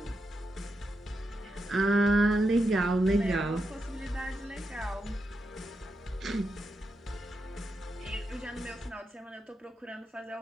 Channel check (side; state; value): both; normal; correlation 0.85